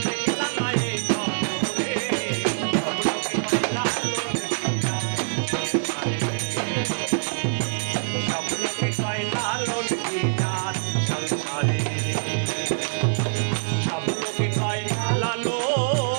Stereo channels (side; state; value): left; silent; digital silence